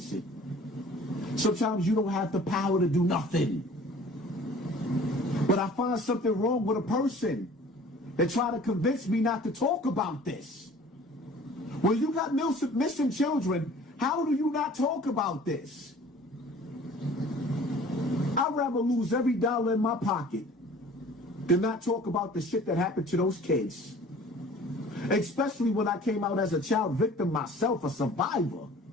it. Sometimes you don't have the power to do nothing. But I find something wrong with a person that try to convince me not to talk about this. When you got missing children, how do you not talk about this? I'd rather lose every dollar in my pocket than not talk about the shit that happened to those kids. Especially when I came out as a child victim myself, a survivor.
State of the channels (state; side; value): normal; both; correlation 0.48